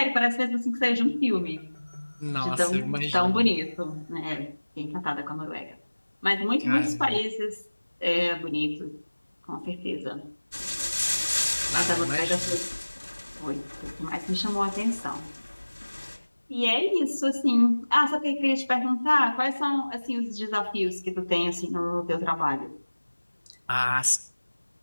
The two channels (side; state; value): both; inverted; correlation -1.00